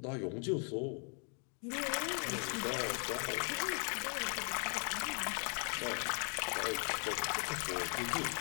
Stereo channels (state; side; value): quieter; right; 39.9 dB